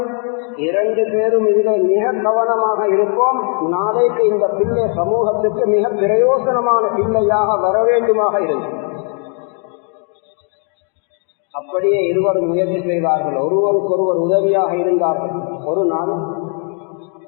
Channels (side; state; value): right; quieter; 38.3 dB